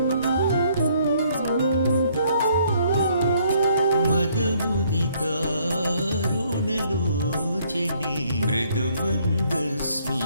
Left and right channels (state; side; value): inverted; both; correlation -0.65